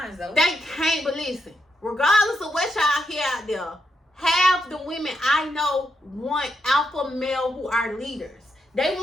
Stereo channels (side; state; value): both; normal; correlation 0.82